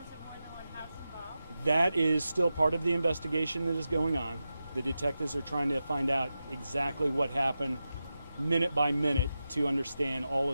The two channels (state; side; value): inverted; both; correlation -0.91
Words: of more than one house involved? That is still part of the investigation that is going on. The detectives are trying to find out exactly what happened minute by minute to understand all